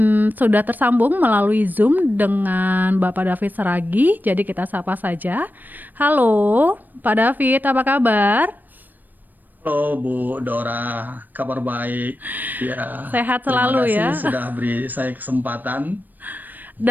sudah tersambung melalui Zoom dengan Bapak David Seragi, jadi kita sapa saja. Halo, Pak David, apa kabar? Halo Bu Dora, kabar baik. Ya, sehat selalu ya. Terima kasih sudah beri saya kesempatan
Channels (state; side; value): late; left; 0.088 ms